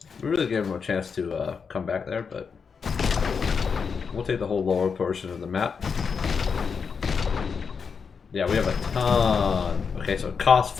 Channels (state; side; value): quieter; right; 5.8 dB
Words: We really gave him a chance to come back there, but we'll take the whole lower portion of the map. Yeah, we have a ton. Okay, so it costs